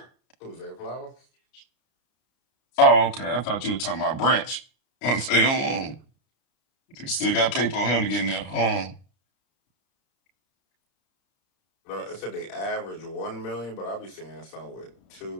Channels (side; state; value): right; late; 33 ms